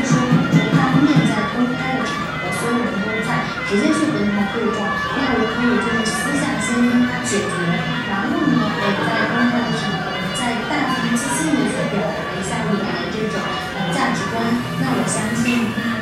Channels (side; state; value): both; identical; correlation 1.00